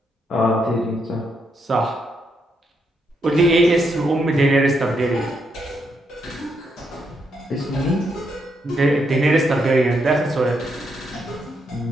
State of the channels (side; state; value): both; normal; correlation 0.78